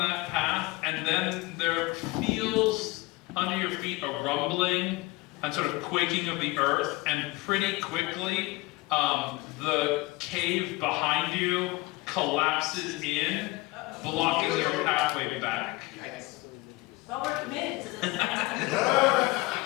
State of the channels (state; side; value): quieter; right; 21.7 dB